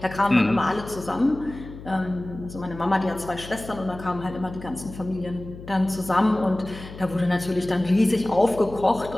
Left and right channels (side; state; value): left; noise; hum, 14 dB below the sound